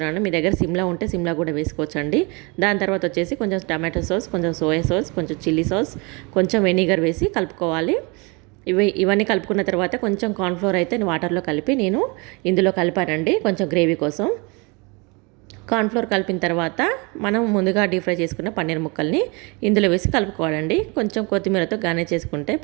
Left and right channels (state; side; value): quieter; left; 29.0 dB